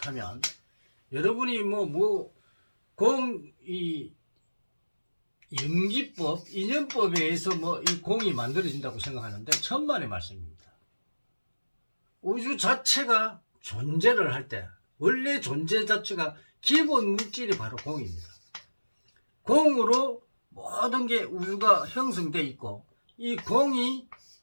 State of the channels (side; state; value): both; inverted; correlation -1.00